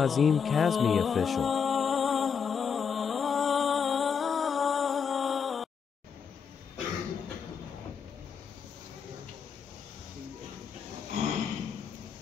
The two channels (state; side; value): quieter; right; 6.6 dB